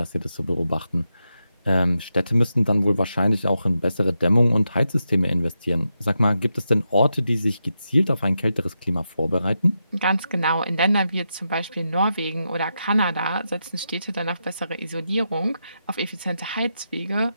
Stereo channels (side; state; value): both; inverted; correlation -0.87